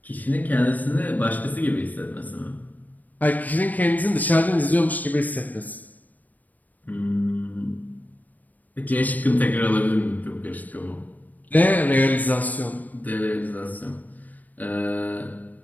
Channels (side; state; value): right; late; 0.081 ms